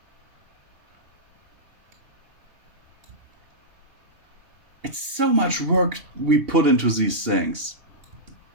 It's so much work we put into these things.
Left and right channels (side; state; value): left; late; 2.8 ms